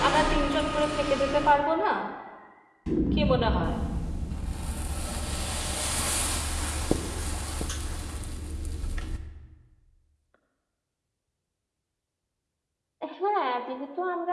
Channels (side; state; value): both; identical; correlation 1.00